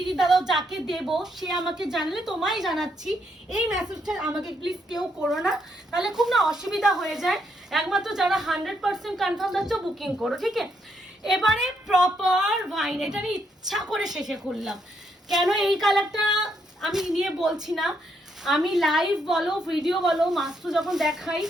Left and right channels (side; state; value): both; normal; correlation 0.76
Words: দাদা যাকে দেবো সে আমাকে জানলে তোমায় জানাচ্ছি, এই মেসেজটা আমাকে প্লিজ কেউ করো না, তাহলে খুব না অসুবিধা হয়ে যায়। একমাত্র যারা 100% কনফার্ম যাচ্ছ বুকিং করো, ঠিক আছে। এবারে প্রপার ওয়াইন, এটা আমি ইচ্ছা করে শেষে খুললাম, কেন এই কালারটা আমি নিয়ে বলছি না, আমি লাইভ বলো ভিডিও বলো মাস্ট্রো যখন দেখাই